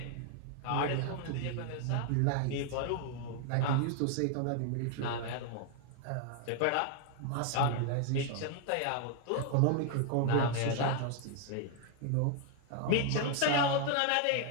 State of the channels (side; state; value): both; different; correlation 0.00